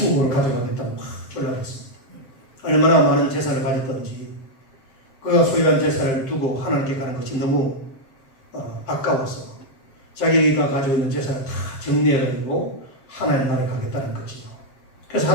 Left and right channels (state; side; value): late; right; 7.5 ms